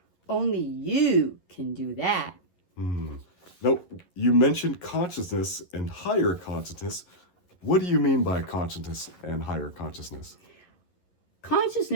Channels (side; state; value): right; late; 11 ms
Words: Only you can do that. Now, you mentioned consciousness and higher consciousness. What do you mean by consciousness and higher consciousness?